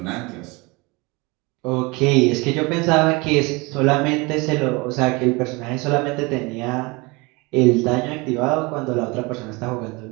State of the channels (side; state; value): left; quieter; 25.9 dB